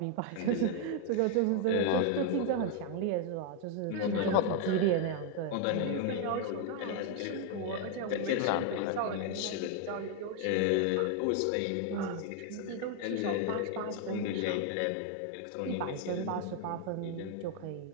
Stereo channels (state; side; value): different; both; correlation 0.00